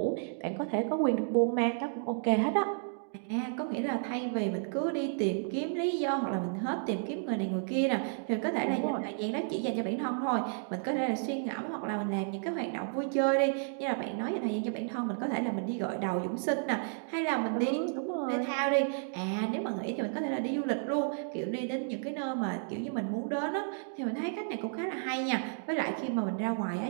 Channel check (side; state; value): left; silent; digital silence